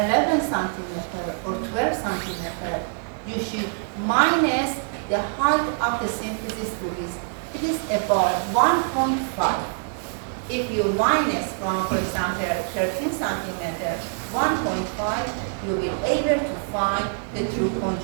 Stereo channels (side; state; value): left; silent; 58 dB below the other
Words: centimeter or 12 centimeter, you should minus the height of the symphysis pubis. It is about 1.5. If you minus from, for example, 13 centimeter, 1.5, you will be able to find the true